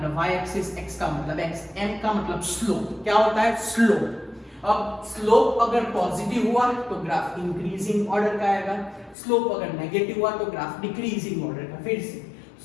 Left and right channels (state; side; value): drops out; right; at 9.2 s